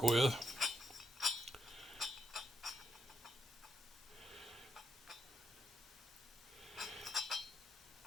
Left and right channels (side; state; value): both; normal; correlation 0.81